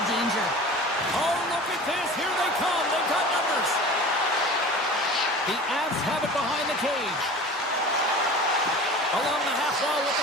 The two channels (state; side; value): normal; both; correlation 0.38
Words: danger. Oh, look at this. Here they come. They've got numbers. The Avs have it behind the cage. Along the half wall with